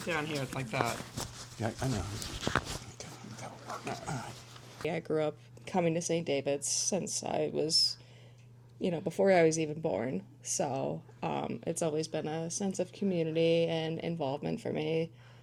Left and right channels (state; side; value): identical; both; correlation 1.00